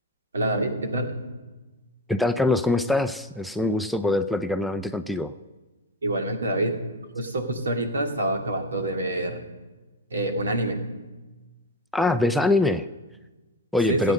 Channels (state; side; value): normal; both; correlation 0.23